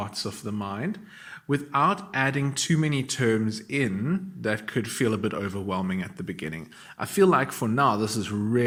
of the mind, without adding too many terms in that could feel a bit overwhelming at the beginning. I feel like for now, this is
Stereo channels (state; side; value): identical; both; correlation 1.00